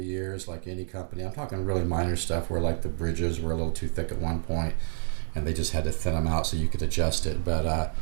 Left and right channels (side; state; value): left; silent; digital silence